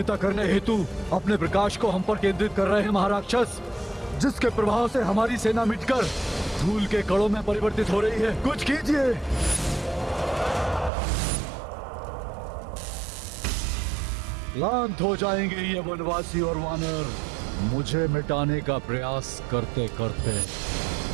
करने हेतु अपने प्रकाश को हम पर केंद्रित कर रहे हैं महाराक्षस, जिसके प्रभाव से हमारी सेना मिटकर धूल के कणों में परिवर्तित हो रही है। कुछ कीजिए। क्लांत हो जाएंगे ये वनवासी और वानर मुझे मिटाने का प्रयास करते करते,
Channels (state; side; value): drops out; left; at 10.9 s